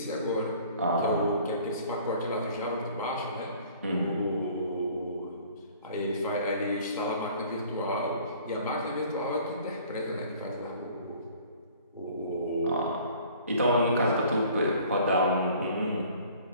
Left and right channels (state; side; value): inverted; both; correlation -0.52